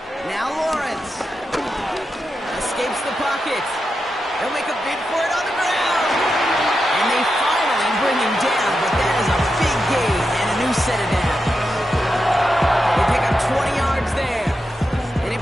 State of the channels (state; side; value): normal; both; correlation 0.88